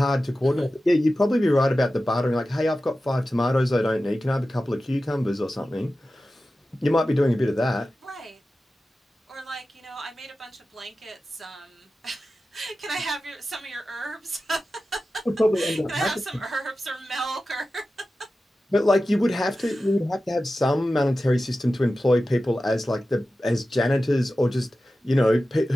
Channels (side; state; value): both; normal; correlation 0.94